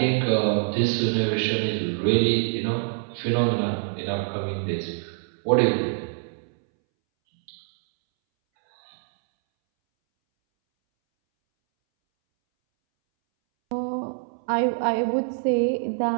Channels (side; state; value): left; silent; 62 dB below the other